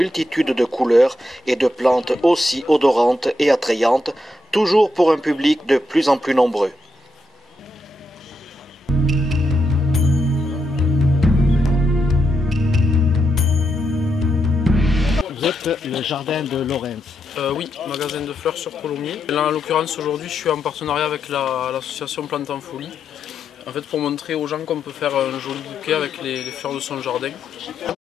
de couleurs et de plantes aussi odorantes et attrayantes, toujours pour un public de plus en plus nombreux. Vous êtes le jardin de Laurens. Oui, magasin de fleurs sur Colomiers. Là, en l'occurrence, aujourd'hui, je suis en partenariat avec l'association Plantes en Folie. En fait, pour montrer aux gens qu'on peut faire un joli bouquet avec les fleurs de son jardin.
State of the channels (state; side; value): normal; both; correlation 0.82